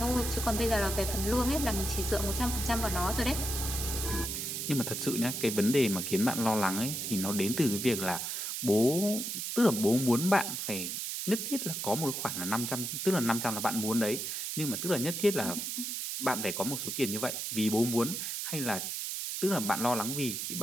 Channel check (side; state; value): right; noise; hiss, 3 dB below the sound